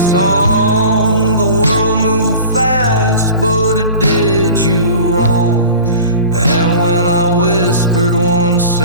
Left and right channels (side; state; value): both; inverted; correlation -0.40